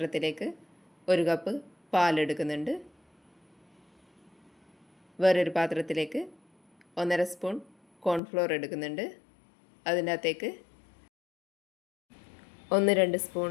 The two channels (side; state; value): right; drops out; at 8.2 s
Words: 1 കപ്പ് പാലെടുക്കുന്നുണ്ട്. വേറൊരു പാത്രത്തിലേക്ക് 1.5 സ്പൂൺ കോൺഫ്ലോർ എടുക്കുന്നുണ്ട്. അതിൻ്റെ അകത്തേക്ക് 1-2